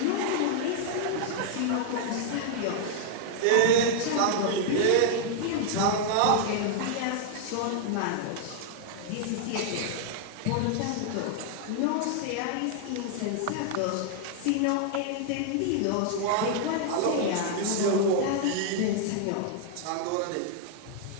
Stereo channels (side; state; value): both; different; correlation -0.01